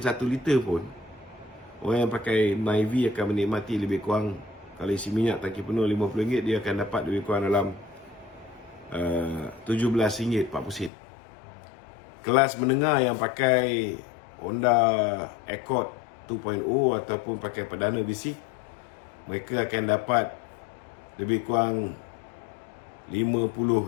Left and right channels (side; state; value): right; drops out; at 10.9 s